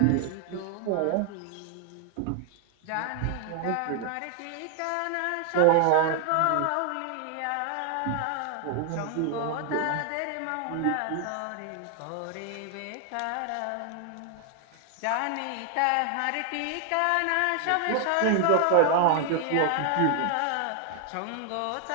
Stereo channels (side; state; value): both; different; correlation 0.00